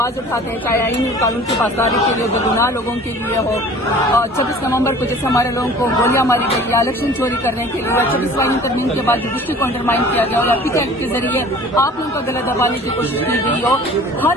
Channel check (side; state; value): both; normal; correlation 0.46